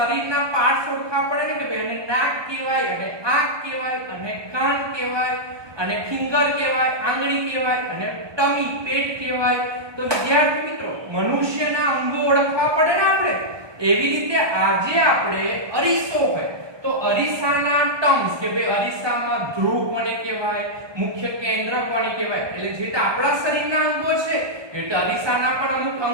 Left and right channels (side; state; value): left; late; 1.2 ms